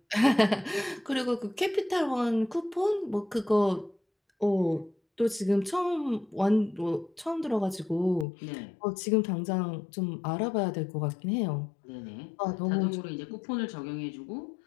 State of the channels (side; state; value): right; drops out; at 8.2 s